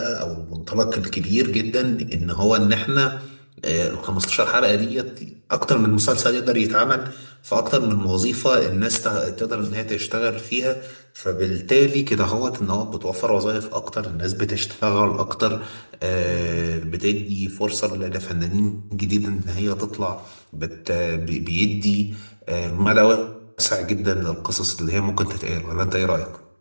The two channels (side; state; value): both; inverted; correlation -1.00